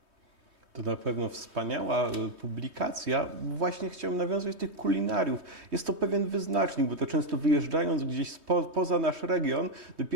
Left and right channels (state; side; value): late; left; 3.2 ms